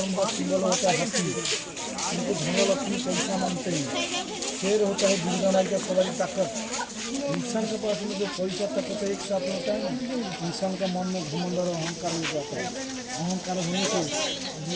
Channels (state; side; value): identical; both; correlation 1.00